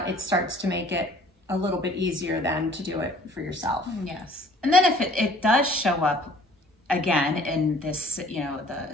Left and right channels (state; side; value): normal; both; correlation 0.54